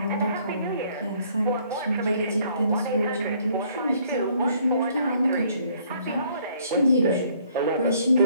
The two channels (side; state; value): both; inverted; correlation -0.63